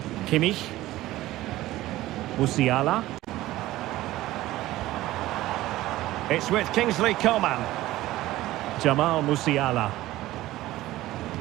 Kimmich. Musiala. It's with Kingsley Coman. Jamal Musiala.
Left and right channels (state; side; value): quieter; left; 16.3 dB